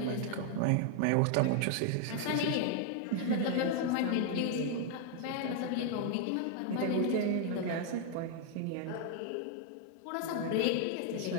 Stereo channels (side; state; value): both; different; correlation 0.00